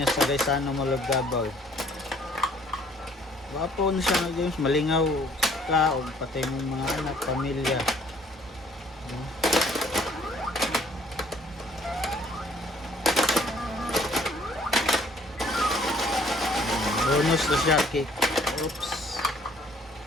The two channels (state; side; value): normal; both; correlation 0.59